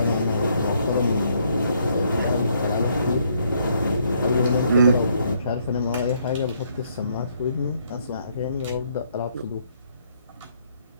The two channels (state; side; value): inverted; both; correlation -0.70